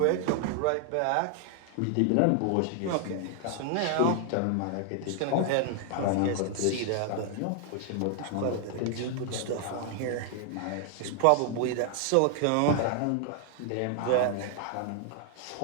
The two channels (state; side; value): different; both; correlation 0.00